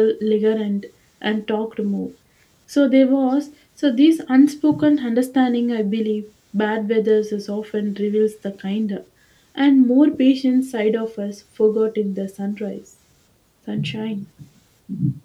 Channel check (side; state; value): both; identical; correlation 1.00